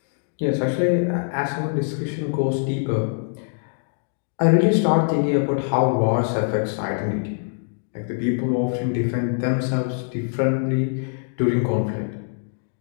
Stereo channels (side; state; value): right; silent; digital silence